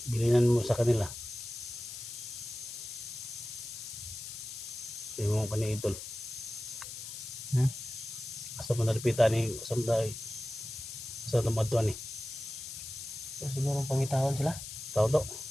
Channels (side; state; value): left; noise; hiss, 9 dB below the sound